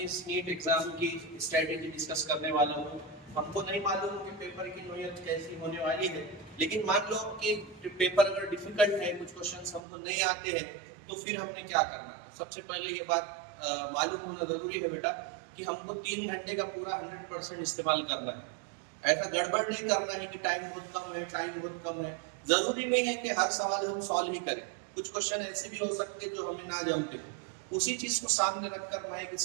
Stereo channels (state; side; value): drops out; left; at 9.8 s